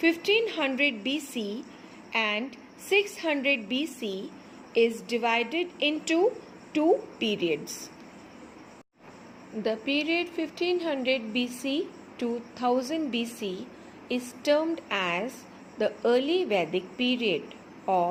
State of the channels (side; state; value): both; identical; correlation 1.00